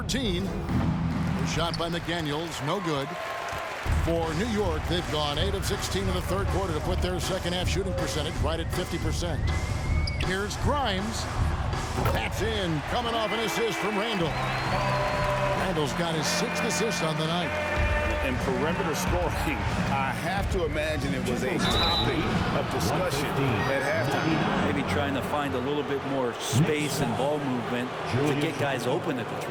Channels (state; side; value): identical; both; correlation 1.00